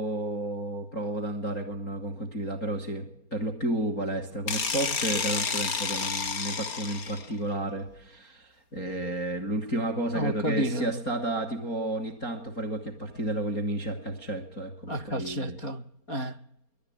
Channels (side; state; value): right; late; 4.3 ms